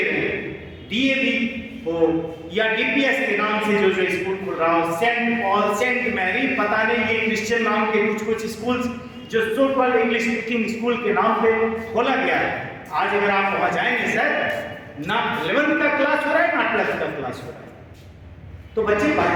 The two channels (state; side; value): identical; both; correlation 1.00